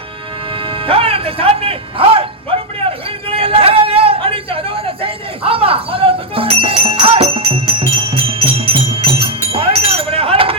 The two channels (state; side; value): normal; both; correlation 0.01